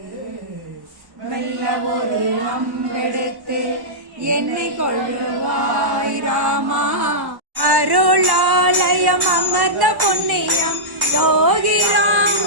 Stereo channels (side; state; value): left; late; 1.1 ms